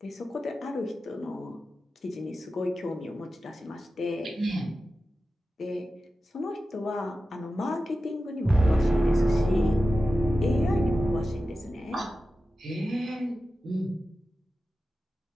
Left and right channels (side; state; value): both; normal; correlation 0.93